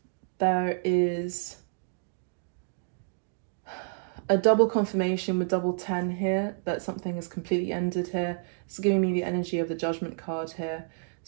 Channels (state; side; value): silent; left; digital silence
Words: there is a double confirmation with double 10 here, that something is completely ended here. It's giving me the energy of the Judgment card here.